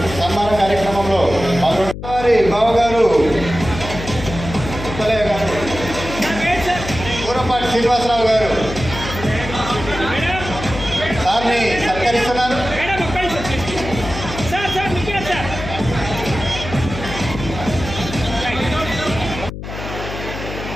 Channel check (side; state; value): left; noise; hum, 9 dB below the sound